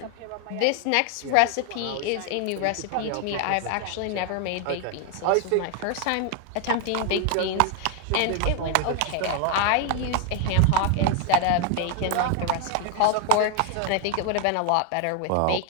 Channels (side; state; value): both; different; correlation 0.00